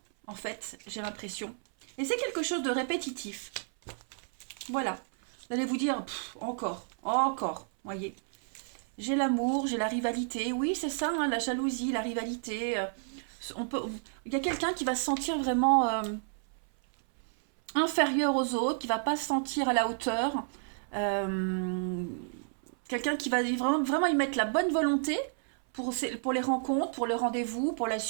en fait, j'ai l'impression. Et c'est quelque chose de répétitif. Voilà. Vous allez vous dire, encore, voyez. J'ai l'amour, j'ai la rivalité. Oui, c'est ça, hein, la jalousie, la rivalité. Il y a quelqu'un qui va se sentir vraiment inférieur aux autres, qui va pas se sentir à la hauteur. Quelqu'un qui va vraiment y mettre la bonne volonté pour les rencontres, pour le rendez-vous, pour la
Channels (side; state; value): left; silent; 57 dB below the other